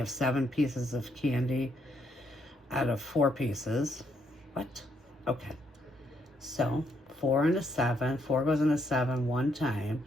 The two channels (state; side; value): normal; both; correlation 0.74